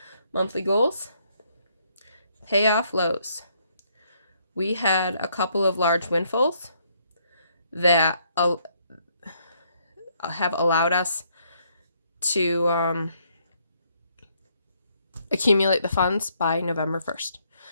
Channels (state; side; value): inverted; both; correlation -0.71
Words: monthly goals, pay off lows. We had a couple of large windfalls that have allowed us to accumulate the funds by November 1st.